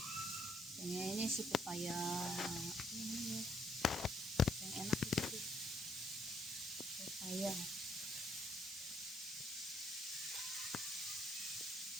Ini si pepaya ini ya. Yang enak itu pepaya.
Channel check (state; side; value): normal; both; correlation 0.69